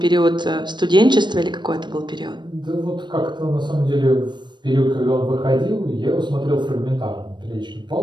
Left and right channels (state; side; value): late; left; 0.22 ms